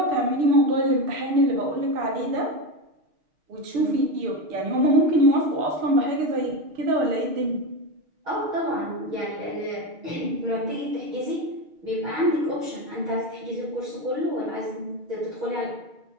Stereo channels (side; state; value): left; late; 6.4 ms